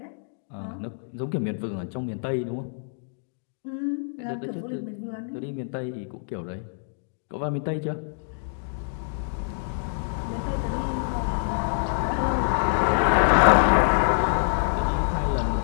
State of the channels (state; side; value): silent; right; digital silence